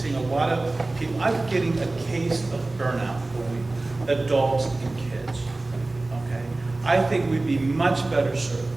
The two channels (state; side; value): quieter; left; 3.0 dB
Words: a lot of people, I'm getting a case of burnout a week, adults and kids, okay? I think we'd be much better served